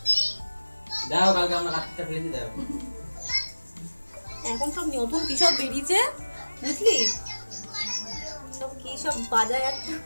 দাও, কালকে আমরা কাটতে ফেলেছি দাও। এখন সব নতুন কি সব বেরিয়েছে বুঝলি, সব কি সব বাজায় একটা।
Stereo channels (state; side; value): inverted; both; correlation -1.00